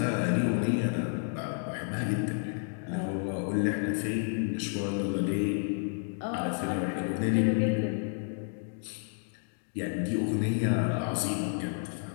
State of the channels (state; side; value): silent; right; 57 dB below the other